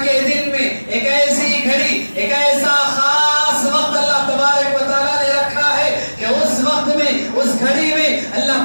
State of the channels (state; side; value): inverted; both; correlation -1.00